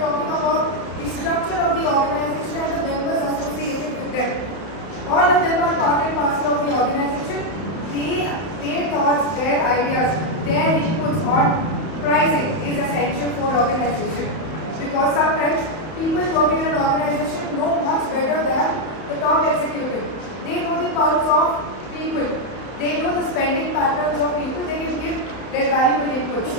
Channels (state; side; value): late; right; 31 ms